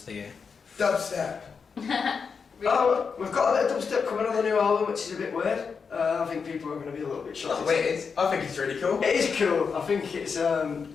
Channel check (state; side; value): quieter; right; 5.7 dB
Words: of the year? Dubstep. Oh, we've got a bit of dubstep coming on the new album, which is a bit weird. I think people are going to be a little bit shocked. Not weird. I think it's really cool. It is cool. I think it's